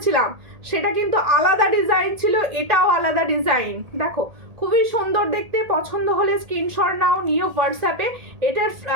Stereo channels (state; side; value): late; left; 1.8 ms